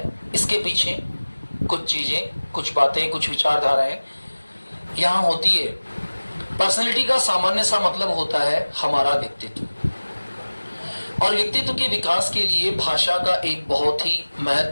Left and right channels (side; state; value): both; inverted; correlation -1.00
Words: इसके पीछे कुछ चीज़ें, कुछ बातें, कुछ विचारधाराएं यहाँ होती है। पर्सनैलिटी का सामान्य सा मतलब होता है हमारा व्यक्तित्व, और व्यक्तित्व के विकास के लिए भाषा का एक बहुत ही